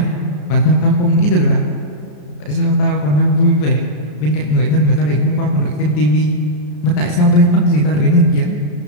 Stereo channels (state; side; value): late; right; 34 ms